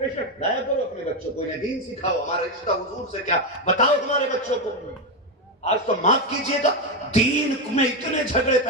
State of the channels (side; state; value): both; normal; correlation 0.09